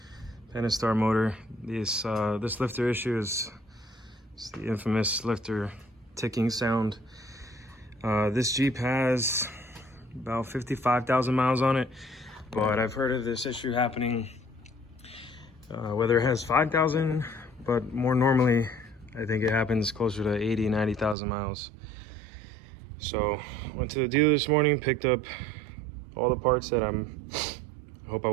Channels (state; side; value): drops out; left; at 21.2 s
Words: Pentastar motor. This lifter issue is the infamous lifter ticking sound. This Jeep has about 55,000 miles on it, but I've heard of this issue happening whether it has 5,000, but more normally I think it happens closer to 80, 90,000 miles. So went to the dealer this morning, picked up all the parts that I hope I